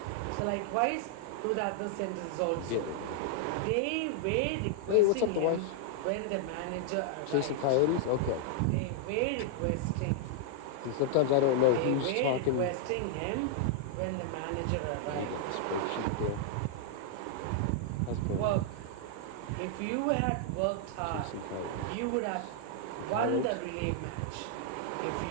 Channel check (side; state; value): both; different; correlation -0.01